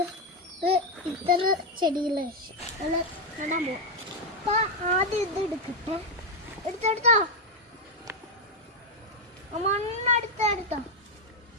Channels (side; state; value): both; normal; correlation 0.03